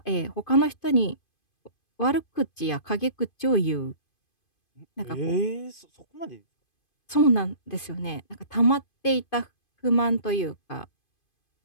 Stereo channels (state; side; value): late; right; 2.5 ms